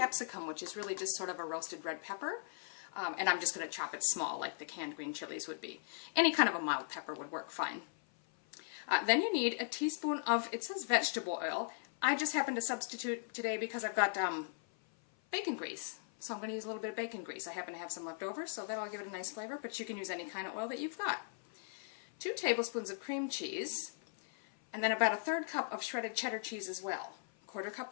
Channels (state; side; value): silent; right; 52 dB below the other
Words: which is really just sort of a roasted red pepper. And I'm just going to chop it small like the canned green chilies would be. Any kind of a mild pepper would work fine. Then you need a teaspoon of, it says vegetable oil. I just happen to substitute today because I've got bacon grease. So I'm going to use a little bit of bacon grease. I happen to have some left over, so that'll give it a nice flavor, but you can use any kind of oil that you've got. 2 tablespoons of cream cheese, and then about a 1/3 cup of shredded cheddar cheese as well. 1/4 cup